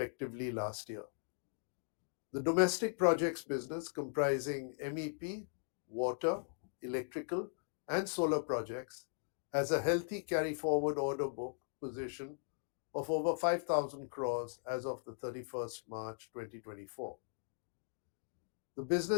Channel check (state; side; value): silent; right; digital silence